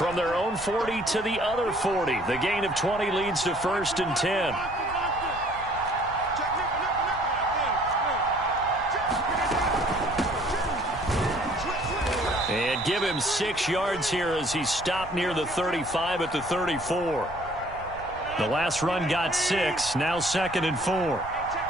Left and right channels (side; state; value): right; noise; rumble, 16 dB below the sound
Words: their own 40 to the other 40. The gain of 20 leads to 1st and 10. And give him 6 yards here as he stopped near the 35 at the 34. The last run got 6. Now 2nd and 4.